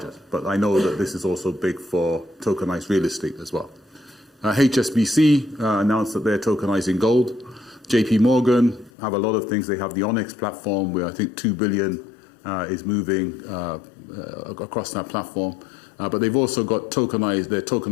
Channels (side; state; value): right; drops out; at 8.9 s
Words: But I know that this is also big for tokenized real estate as well. HSBC announced that they're tokenizing gold. JP Morgan have a lot of things. They have the Onyx platform where I think 2 billion is moving across that platform. But they've also got their